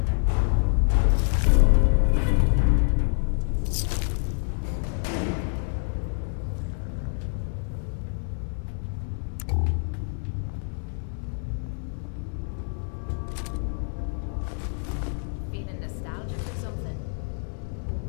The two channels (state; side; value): silent; right; 60 dB below the other